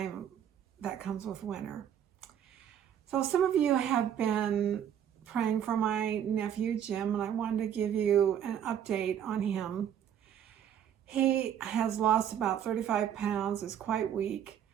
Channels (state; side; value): quieter; left; 9.4 dB